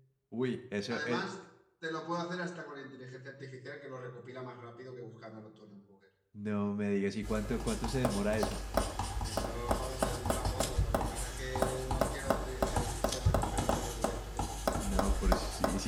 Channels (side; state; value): both; identical; correlation 1.00